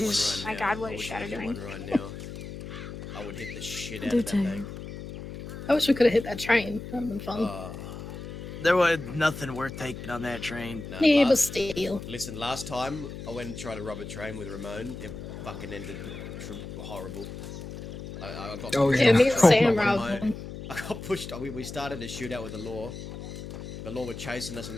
right My now. God, what I is wish I Shadow could get doing? one right now. I would hit the shit out Do of that too. thing. I wish we could have hit that train. That would have been fun. There was nothing worth taking on that train. No, Yeah, but last, still. listen, last time I went and tried to rob a train with Ramon, it fucking ended horrible. I got Oh, pushed Yeah, yeah. me and off Sam by robbed my- one. I got pushed. We started a shootout with the law. The law were chasing us on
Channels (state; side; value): noise; left; hum, 10 dB below the sound